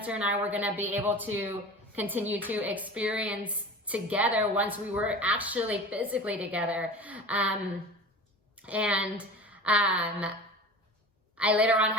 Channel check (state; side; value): normal; both; correlation 0.36